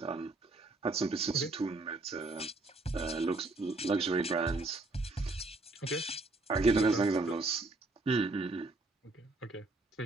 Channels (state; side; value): quieter; left; 3.2 dB